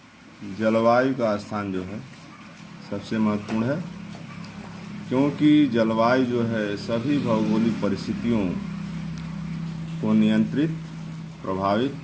जलवायु का स्थान जो है सबसे महत्वपूर्ण है, क्योंकि जलवायु जो है सभी भौगोलिक परिस्थितियों को नियंत्रित, प्रभावित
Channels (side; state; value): both; identical; correlation 1.00